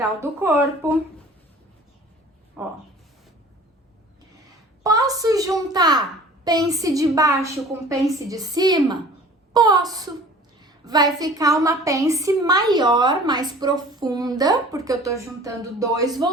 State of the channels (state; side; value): normal; both; correlation 0.46